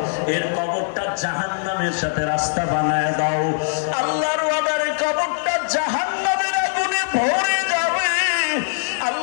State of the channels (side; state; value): right; silent; digital silence